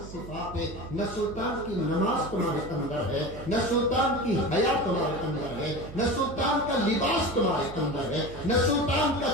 صفات ہے؟ نہ سلطان کی نماز تمہارے اندر ہے، نہ سلطان کی حیا تمہارے اندر ہے، نہ سلطان کا لباس تمہارے اندر ہے، نہ سلطان کا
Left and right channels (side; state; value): right; noise; hum, 13 dB below the sound